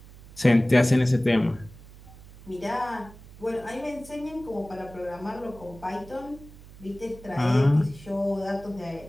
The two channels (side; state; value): right; noise; hum, 19 dB below the sound